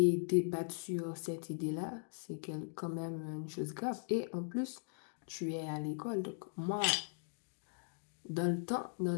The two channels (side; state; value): right; silent; digital silence